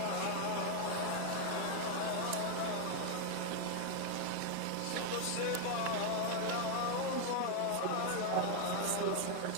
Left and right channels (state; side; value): different; both; correlation 0.01